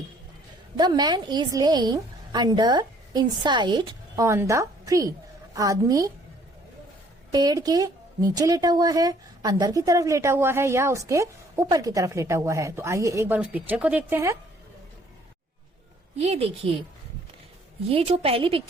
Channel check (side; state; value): both; normal; correlation 0.60